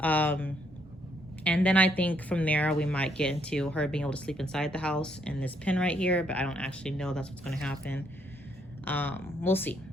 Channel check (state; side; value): normal; both; correlation 0.72